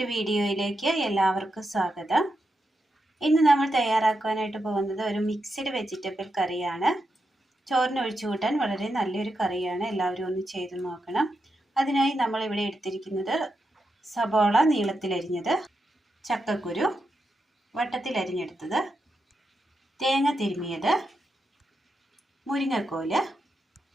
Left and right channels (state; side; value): normal; both; correlation 0.86